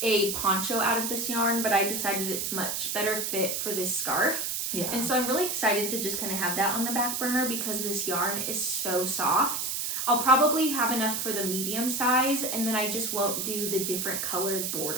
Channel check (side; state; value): right; noise; hiss, 1 dB below the sound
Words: a poncho out of this yarn, but I decided it's much better fit for this scarf. Yeah. And so I'm really excited to just kind of have that on the back burner because this yarn is so soft. I'll probably have enough for the medium size, and then I just won't do the different colored